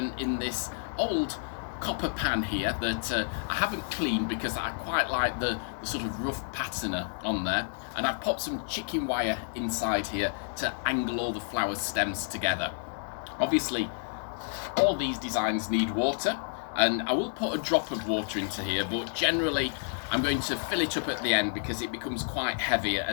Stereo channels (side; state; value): right; silent; digital silence